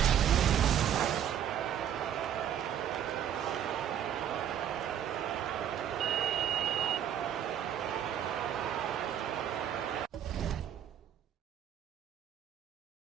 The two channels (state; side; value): quieter; left; 9.6 dB